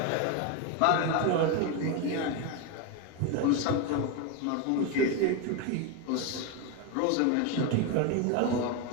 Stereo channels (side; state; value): both; different; correlation 0.02